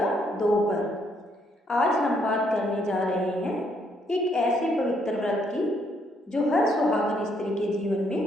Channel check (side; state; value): both; normal; correlation 0.72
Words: 2 पर। आज हम बात करने जा रहे हैं एक ऐसे पवित्र व्रत की जो हर सुहागन स्त्री के जीवन